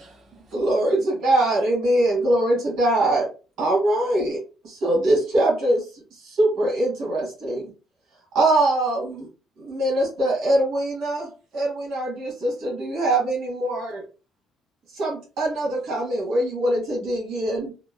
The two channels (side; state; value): both; normal; correlation 0.74